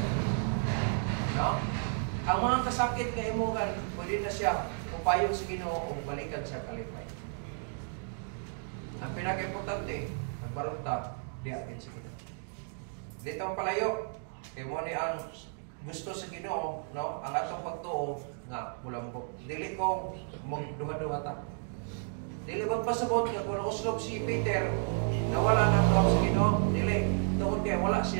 No? Ang mga kasakit nga imuhan, pwede na siya upayon sa Ginoo o balikan siya kalipay. Ang pinaka-importante, ang barunta, diyakin sa Ginoo. Dito ang palayo, kaya mo ni ang gusto sa Ginoo, no? Ang atong pagtuo, nga, mula mo, dili ko magduha-duha ta. Dili magpasabot nga kung uslog si Peter nawala nang daw sa Ginoo, dili tungod kay wala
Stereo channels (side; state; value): left; silent; 56 dB below the other